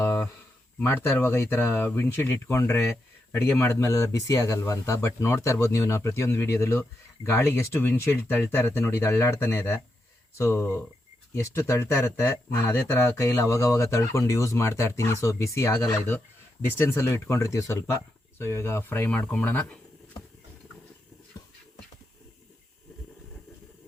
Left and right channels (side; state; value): both; normal; correlation 0.84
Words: ಮಾಡ್ತಾ ಇರುವಾಗ ಈ ಥರ ವಿಂಡ್ಶೀಲ್ಡ್ ಇಟ್ಕೊಂಡ್ರೆ ಅಡುಗೆ ಮಾಡಿದ್ಮೇಲೆಲ್ಲ ಬಿಸಿ ಆಗಲ್ವಾ ಅಂತ. ಬಟ್ ನೋಡ್ತಾ ಇರ್ಬೋದು ನೀವು, ನಾವು ಪ್ರತಿಯೊಂದು ವೀಡಿಯೋದಲ್ಲೂ ಗಾಳಿಗೆ ಎಷ್ಟು ವಿಂಡ್ಶೀಲ್ಡ್ ತಳ್ತಾ ಇರುತ್ತೆ ನೋಡಿ, ಇದು ಅಳ್ಳಾಡ್ತಾನೆ ಇದೆ. ಸೊ ಎಷ್ಟು ತಳ್ತಾ ಇರುತ್ತೆ, ನಾನು ಅದೇ ಥರ ಕೈಯಲ್ಲಿ ಅವಾಗವಾಗ ತಳ್ಕೊಂಡು ಯೂಸ್ ಮಾಡ್ತಾ ಇರ್ತೀನಿ. ಸೊ ಬಿಸಿ ಆಗಲ್ಲ ಇದು, ಡಿಸ್ಟೆನ್ಸಲ್ಲೂ ಇಟ್ಕೊಂಡಿರ್ತೀವಿ ಸ್ವಲ್ಪ. ಸೊ ಇವಾಗ ಫ್ರೈ ಮಾಡ್ಕೊಂಬಿಡೋಣ.